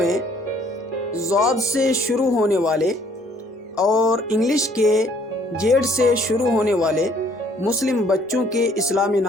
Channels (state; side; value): normal; both; correlation 0.61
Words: ضاد سے شروع ہونے والے اور انگلش کے جیڈ سے شروع ہونے والے مسلم بچوں کے اسلامی